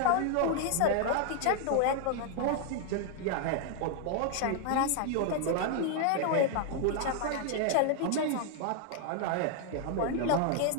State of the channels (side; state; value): both; different; correlation 0.00